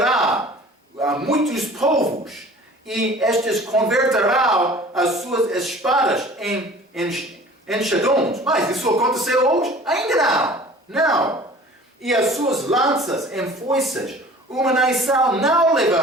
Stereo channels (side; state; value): both; normal; correlation 0.45